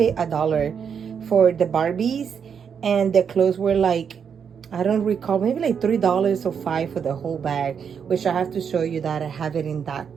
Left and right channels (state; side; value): quieter; left; 7.1 dB